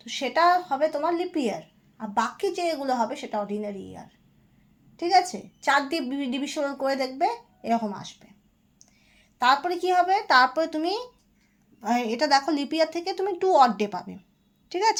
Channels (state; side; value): identical; both; correlation 1.00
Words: তো সেটা হবে তোমার লিপ ইয়ার। আর বাকি যেগুলো হবে সেটা অর্ডিনারি ইয়ার, ঠিক আছে? 4 দিয়ে ডিভিশন করে দেখবে এরকম আসবে। তারপরে কি হবে, তারপরে তুমি এটা দেখো লিপ ইয়ার থেকে তুমি 2 অড ডে পাবে, ঠিক